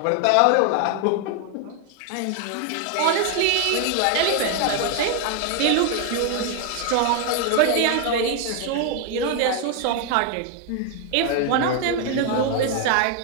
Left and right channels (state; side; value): different; both; correlation 0.00